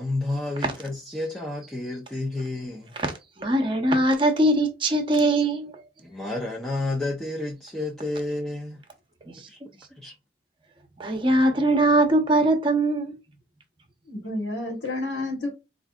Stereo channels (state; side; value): normal; both; correlation 0.56